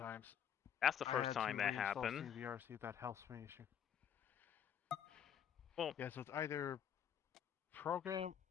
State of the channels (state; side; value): quieter; right; 9.0 dB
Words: That's the I first had time to that reinstall happened. CVR, see if that helps me issue. Well, yeah, so it's either program